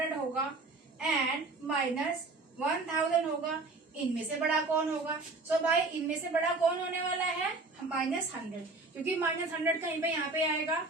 होगा एंड -1000 होगा, इनमें से बड़ा कौन होगा? सो भाई इनमें से बड़ा कौन होने वाला है? -100, क्योंकि -100 कहीं पे यहाँ पे आएगा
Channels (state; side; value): quieter; left; 3.5 dB